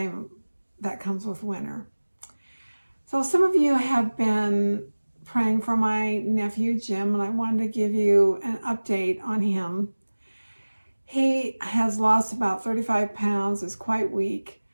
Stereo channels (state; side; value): inverted; both; correlation -1.00